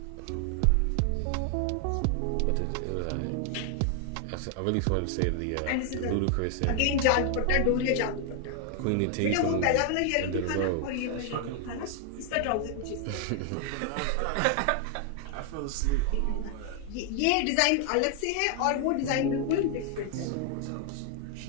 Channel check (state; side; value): different; both; correlation 0.00